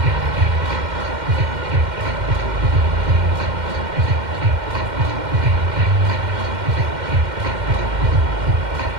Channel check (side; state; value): left; late; 2.1 ms